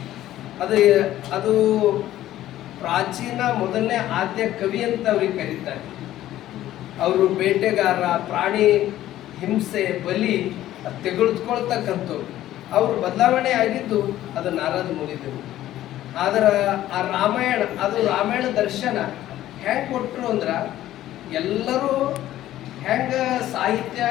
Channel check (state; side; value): quieter; right; 13.6 dB